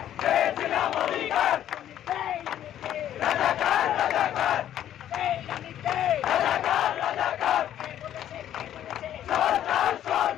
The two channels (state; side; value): quieter; right; 11.2 dB